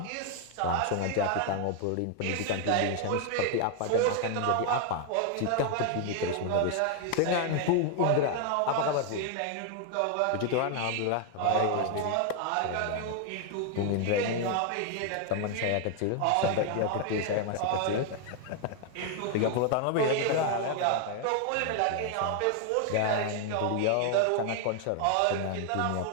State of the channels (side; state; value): both; different; correlation 0.00